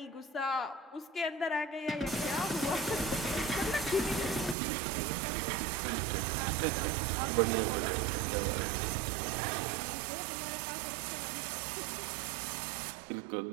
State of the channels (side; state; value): left; drops out; at 4.5 s